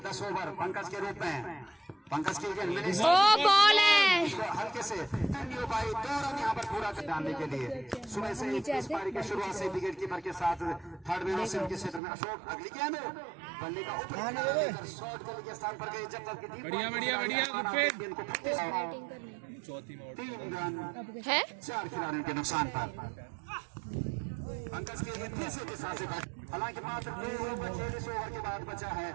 10 ओवर पंकज के रूप में पंकज की बॉल है हल्के से नहीं हो पाई। 2 रन यहाँ पर पूरा कर डालने के लिए सुबह से इस पारी की शुरुआत से विकेट कीपर के साथ थर्ड मैन से उनके क्षेत्र में अशोक अगली गेंद बल्ले का ऊपर शॉट गली के स्थान पर गए जब तक कि 3 रन है 4 खिलाड़ियों के नुकसान पर पंकज के तीसरे के साथ हालांकि मात्र 2 ओवर 46 ओवर के बाद बचा है,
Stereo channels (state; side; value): drops out; left; at 12.0 s